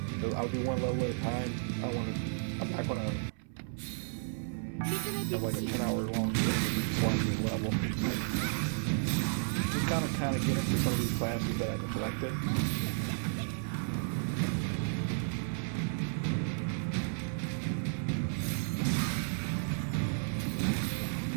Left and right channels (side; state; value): left; silent; 56 dB below the other